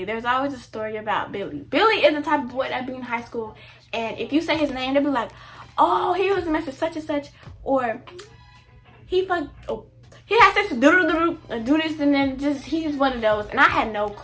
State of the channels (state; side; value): identical; both; correlation 1.00